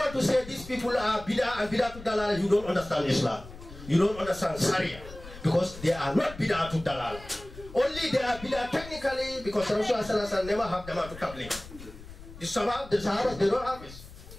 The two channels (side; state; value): left; noise; rumble, 16 dB below the sound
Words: to say these people are bidah and bidah to dalala, you don't understand Islam. You don't understand Sharia. Because they are not bidah to dalala. Only they are bidah technically because Rasulullah never have Jamaatul Tabligh. The Sahabas, they don't have it.